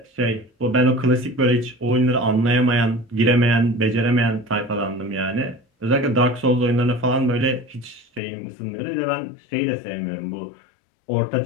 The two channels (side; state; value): right; drops out; at 8.2 s